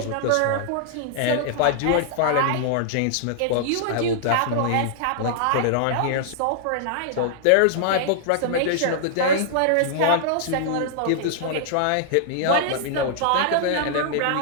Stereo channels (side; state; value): both; different; correlation -0.01